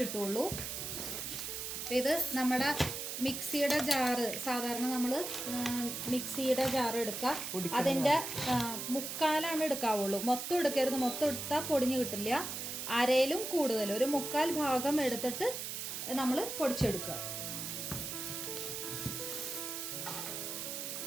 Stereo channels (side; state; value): right; noise; hiss, 5 dB below the sound